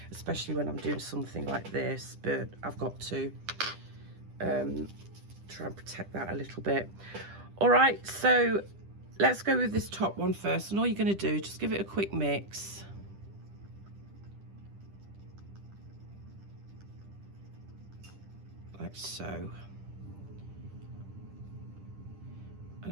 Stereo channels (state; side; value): late; left; 10 ms